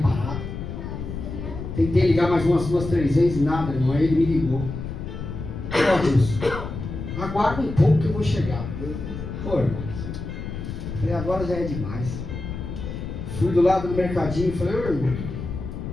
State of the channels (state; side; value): noise; left; rumble, 7 dB below the sound